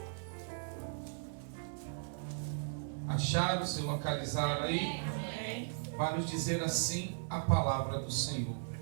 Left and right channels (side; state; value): left; silent; 53 dB below the other